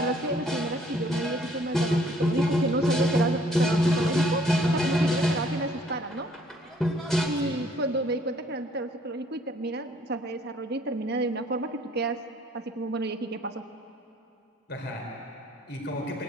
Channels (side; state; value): both; normal; correlation 0.61